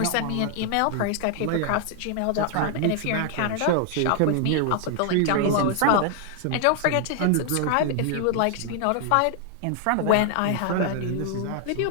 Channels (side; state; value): both; different; correlation 0.00